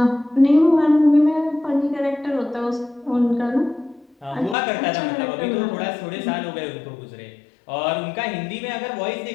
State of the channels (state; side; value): drops out; right; at 4.5 s